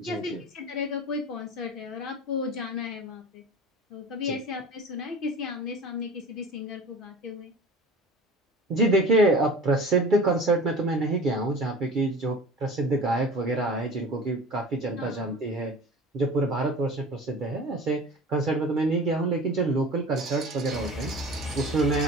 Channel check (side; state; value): both; normal; correlation 0.38